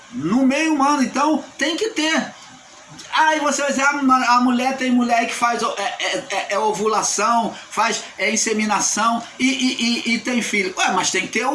No meio humano, então, tem que ter. Aí você vai dizer, a mulher tem mulher que faz ovulação, faz inseminação e tem filho. Ué, mas tem que ter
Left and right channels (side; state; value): both; identical; correlation 1.00